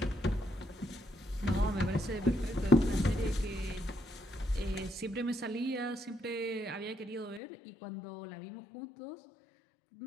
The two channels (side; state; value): right; drops out; at 7.4 s